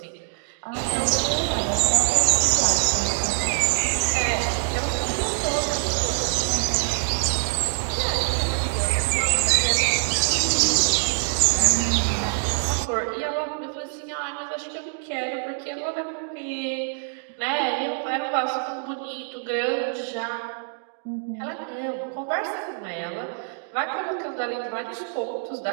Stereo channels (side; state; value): left; silent; digital silence